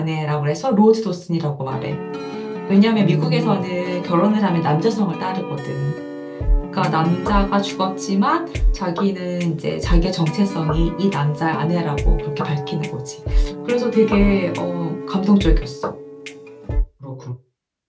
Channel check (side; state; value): both; identical; correlation 1.00